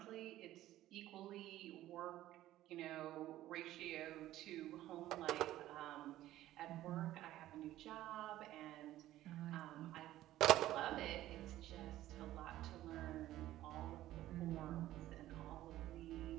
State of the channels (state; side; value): quieter; left; 14.4 dB